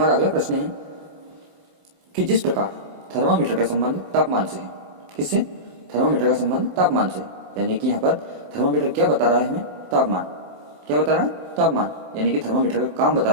अगला प्रश्न है कि जिस प्रकार थर्मामीटर का संबंध तापमान से है। किससे? थर्मामीटर का संबंध तापमान से, यानी कि यहाँ पर थर्मामीटर क्या बता रहा है हमें? तापमान। क्या बता रहा है? तापमान, यानी कि थर्मामीटर का काम बता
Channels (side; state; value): left; late; 27 ms